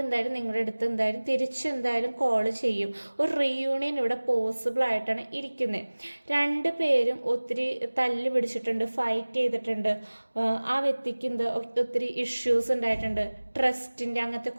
നിങ്ങളുടെ അടുത്ത് എന്തായാലും തിരിച്ചെന്തായാലും കോൾ ചെയ്യും. ഒരു റീയൂണിയൻ ഇവിടെ പോസിബിൾ ആയിട്ടാണ് ഇരിക്കുന്നത്. രണ്ടു പേരും ഒത്തിരി തല്ല് പിടിച്ചിട്ടുണ്ട്, ഫൈറ്റ് ചെയ്തിട്ടുണ്ട്. ആ വ്യക്തിക്ക് ഒത്തിരി ഇഷ്യൂസ് ഉണ്ടായിട്ടുണ്ട്. ട്രസ്റ്റിൻ്റെ അങ്ങനത്തെ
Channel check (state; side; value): inverted; both; correlation -1.00